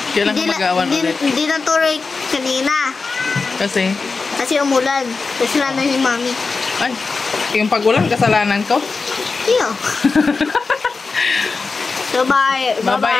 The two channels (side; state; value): right; quieter; 4.3 dB